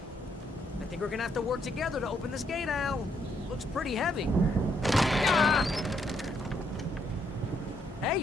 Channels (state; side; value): normal; both; correlation 0.74